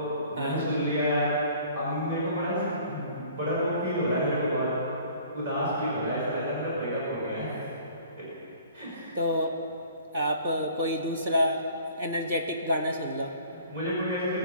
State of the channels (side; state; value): both; inverted; correlation -0.51